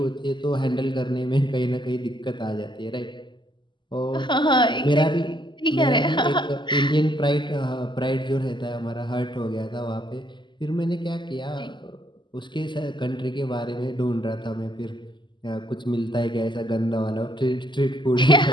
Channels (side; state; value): right; late; 0.22 ms